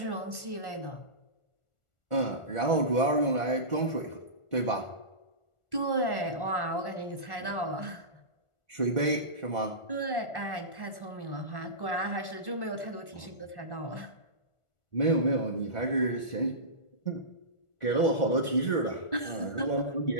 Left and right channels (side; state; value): right; late; 1.4 ms